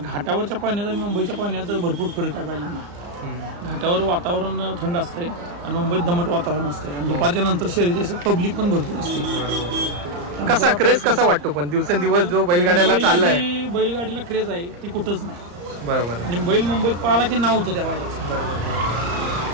घाटावरच्या पाण्यात आणि मुंबईच्या पाण्यात भरपूर फरक आहे बैलांना. घाटावर वातावरण थंड असते आणि मुंबईत दमट वातावरण असते, आणि दुपारच्या नंतर शर्यती असतात, पब्लिक पण भरपूर असते. कसा क्रेज कसा वाटतो पण दिवसेंदिवस जो बैलगाड्याला चाललाय? बैलगाडीला क्रेज आहे ती कुठंच नाही. बरोबर. आणि बैल मुंबईत पाहिला की नाव होतं त्या बैलाचं. बरोबर.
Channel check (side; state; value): left; late; 34 ms